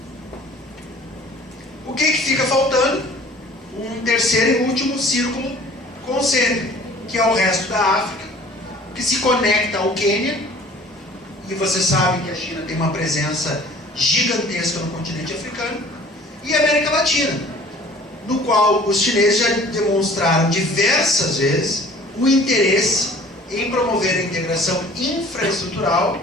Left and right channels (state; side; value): normal; both; correlation 0.50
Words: O que fica faltando? Um terceiro e último círculo concêntrico, que é o resto da África, que se conecta ao Quênia, e vocês sabem que a China tem uma presença gigantesca no continente africano, e a América Latina, no qual os chineses já demonstraram diversas vezes o interesse em promover a integração infraestrutural